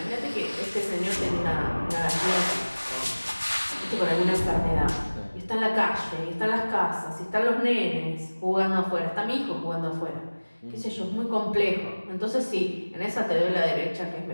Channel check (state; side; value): inverted; both; correlation -1.00